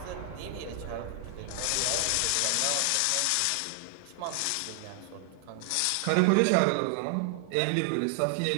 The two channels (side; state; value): both; different; correlation 0.00